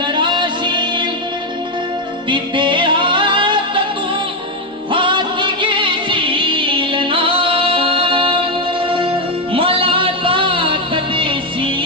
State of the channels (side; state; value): both; normal; correlation 0.06